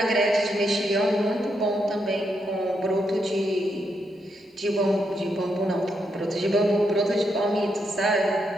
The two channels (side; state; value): both; normal; correlation 0.80